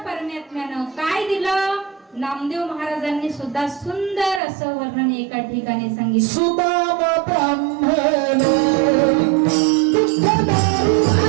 परमात्म्यानं काय दिलं नामदेव महाराजांनी सुद्धा सुंदर असं वर्णन एका ठिकाणी सांगितलं सुदाम ब्राह्मण दुःखदारी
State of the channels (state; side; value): drops out; left; at 4.4 s